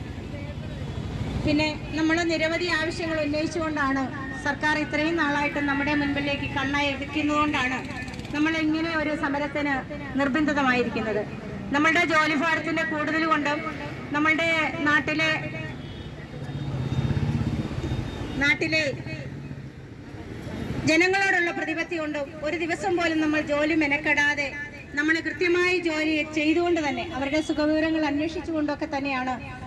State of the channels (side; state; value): both; identical; correlation 1.00